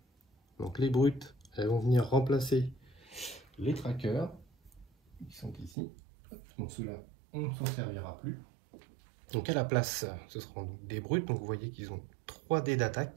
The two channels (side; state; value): left; drops out; at 5.8 s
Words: Donc les brutes, elles vont venir remplacer les trackers qui sont ici. Donc ceux-là, on ne s'en servira plus. Donc à la place, ce seront des brutes. Donc vous voyez qu'ils ont 3 dés